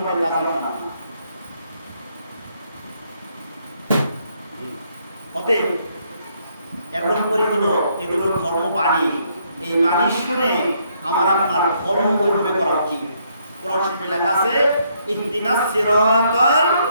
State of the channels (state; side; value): inverted; both; correlation -0.72